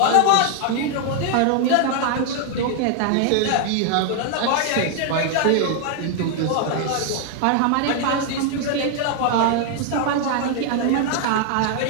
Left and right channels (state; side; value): different; both; correlation 0.00